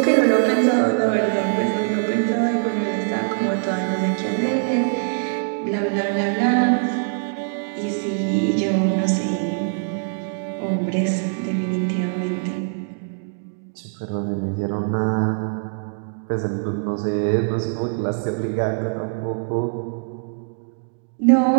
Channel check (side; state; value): left; silent; digital silence